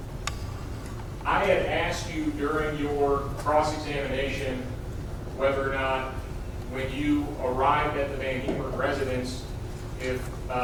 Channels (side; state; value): both; identical; correlation 1.00